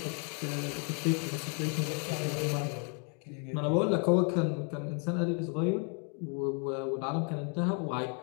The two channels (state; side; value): quieter; right; 38.6 dB